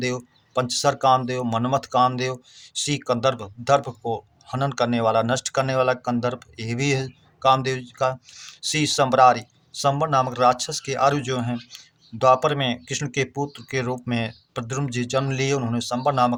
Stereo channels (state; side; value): identical; both; correlation 1.00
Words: पंचसर कामदेव, मनमथ कामदेव। सी कंदर्प, दर्प को हनन करने वाला, नष्ट करने वाला कंदर्प, ये भी है कामदेव जी का। सी संबरारी, संबर नामक राक्षस के आरु जो हैं, द्वापर में कृष्ण के पुत्र के रूप में प्रद्युम्न जी जन्म लिए, उन्होंने संबर